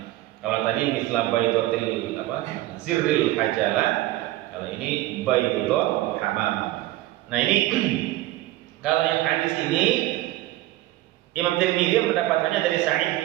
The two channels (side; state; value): left; quieter; 16.4 dB